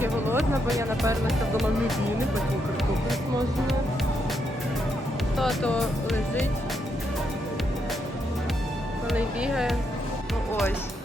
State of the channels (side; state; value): both; normal; correlation 0.79